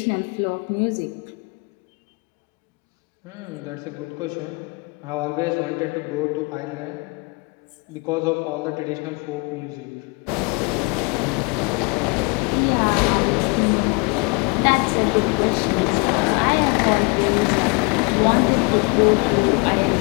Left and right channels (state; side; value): quieter; right; 31.4 dB